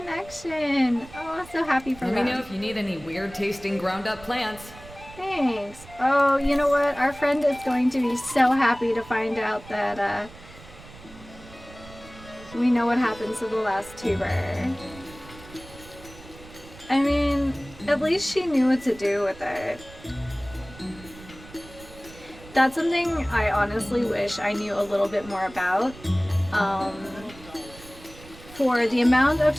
Oh, I'm so happy for Let them. me know if you need any weird tasting ground up plants. Thanks. Oh, you know what? Our friend is going to be so happy to find out that we know what happens to the last tuber. I mean, at least she knew what to do with it. That's something I honestly wish I knew a little bit more about. For the amount of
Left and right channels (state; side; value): noise; right; rumble, 19 dB below the sound